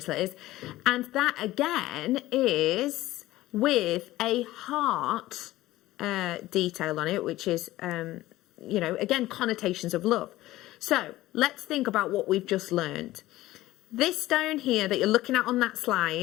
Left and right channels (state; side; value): quieter; right; 16.5 dB